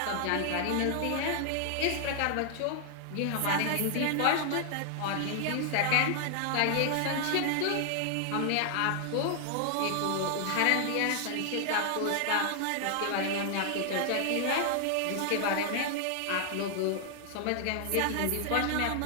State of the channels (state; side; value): different; both; correlation 0.00